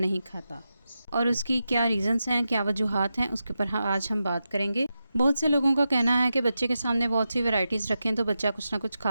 खाता और उसकी क्या रीज़न्स हैं, क्या वजूहात हैं, उसके ऊपर आज हम बात करेंगे। बहुत से लोगों का कहना है कि बच्चे के सामने बहुत सी वैराइटीज़ रखें तो बच्चा कुछ ना कुछ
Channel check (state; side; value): inverted; both; correlation -0.90